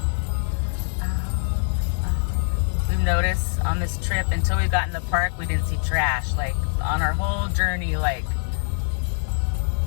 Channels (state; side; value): silent; right; 63 dB below the other